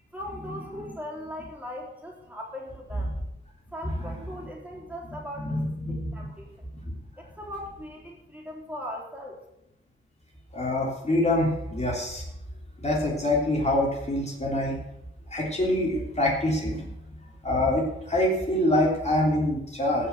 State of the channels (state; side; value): normal; both; correlation 0.49